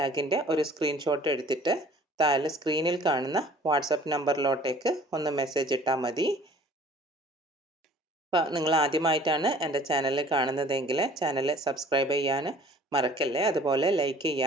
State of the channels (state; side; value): normal; both; correlation 0.51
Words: ഒരു സ്ക്രീൻഷോട്ട് എടുത്തിട്ട് താഴെ സ്ക്രീനിൽ കാണുന്ന വാട്സപ്പ് നമ്പറിലോട്ടേക്ക് ഒന്ന് മെസ്സേജ് ഇട്ടാൽ മതി. അപ്പോൾ നിങ്ങൾ ആദ്യമായിട്ടാണ് എൻ്റെ ചാനൽ കാണുന്നതെങ്കിൽ ചാനൽ സബ്സ്ക്രൈബ് ചെയ്യാൻ മറക്കല്ലേ. അതുപോലെ ലൈക്ക്